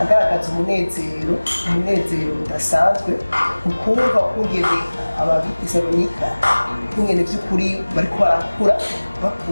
agaragaza umunezero udasanzwe mu kumva kungene ab'Itesalonike kungene by'ukuri bariko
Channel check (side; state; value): both; inverted; correlation -1.00